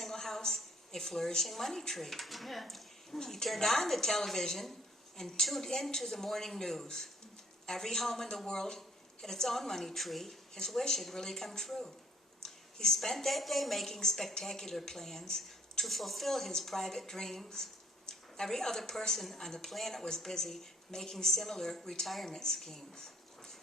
house, a flourishing money tree. Yeah. He turned on the television and tuned into the morning news. Every home in the world had its own money tree. His wish had really come true. He spent that day making spectacular plans to fulfill his private dreams. Every other person on the planet was busy making similar retirement schemes.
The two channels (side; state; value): both; normal; correlation 0.60